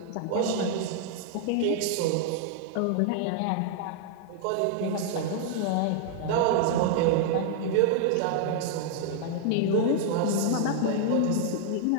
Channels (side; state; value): both; different; correlation 0.00